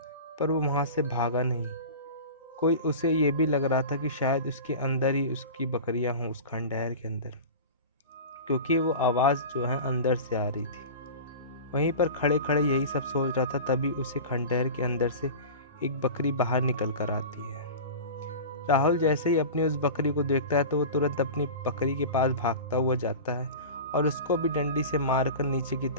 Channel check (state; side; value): inverted; both; correlation -0.33